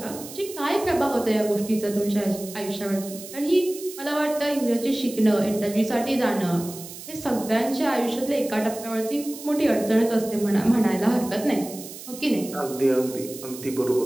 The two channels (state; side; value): noise; right; hiss, 13 dB below the sound